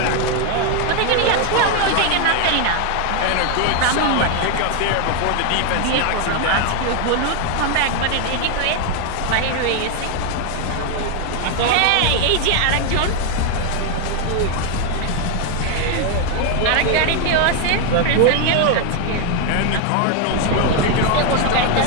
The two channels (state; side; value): different; both; correlation 0.01